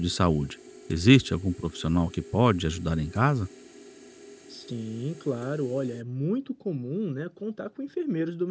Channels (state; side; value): identical; both; correlation 1.00